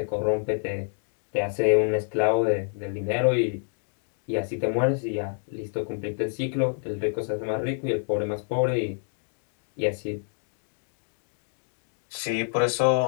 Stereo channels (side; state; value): right; silent; digital silence